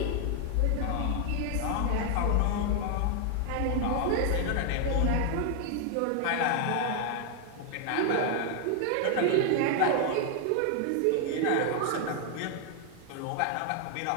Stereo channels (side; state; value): both; different; correlation 0.00